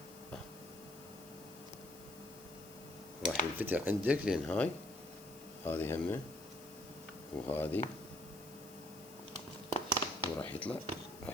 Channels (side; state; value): left; noise; hiss, 18 dB below the sound